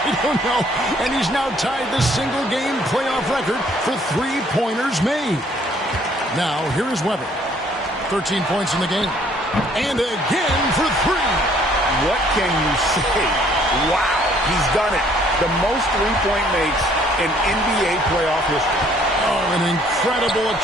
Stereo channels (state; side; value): normal; both; correlation 0.62